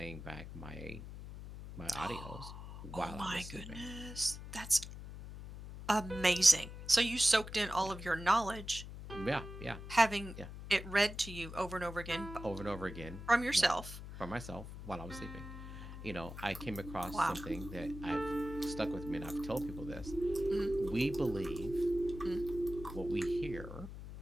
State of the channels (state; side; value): noise; left; hum, 11 dB below the sound